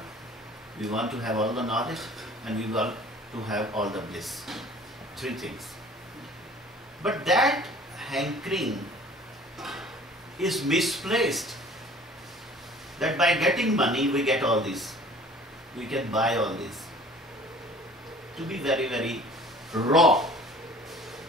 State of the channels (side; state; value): both; normal; correlation 0.49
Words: we want to have all the knowledge, and we want to have all the bliss. Three things. But that hankering is misplaced. That by getting money we get all this. We can buy all this. To be very, very raw,